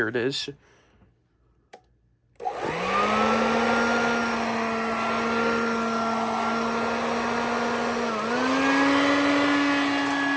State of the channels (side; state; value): both; identical; correlation 1.00